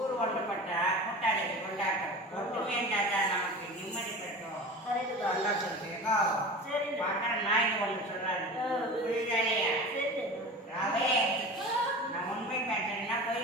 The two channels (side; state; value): both; normal; correlation 0.34